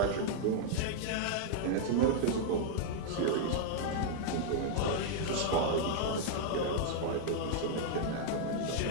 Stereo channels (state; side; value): different; both; correlation -0.01